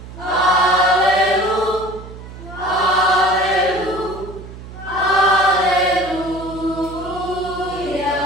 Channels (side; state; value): right; noise; hum, 14 dB below the sound